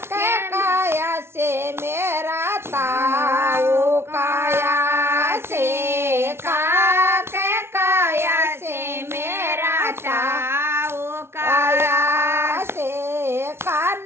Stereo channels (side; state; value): left; late; 0.12 ms